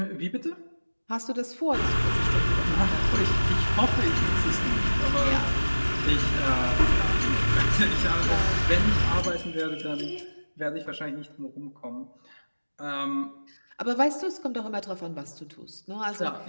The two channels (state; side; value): inverted; both; correlation -1.00